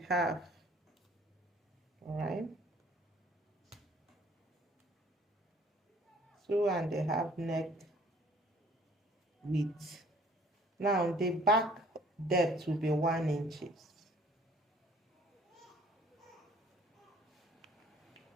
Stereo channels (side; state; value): both; normal; correlation 0.56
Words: All right, 2.5 neck width. Now, the back depth will be 1 inches.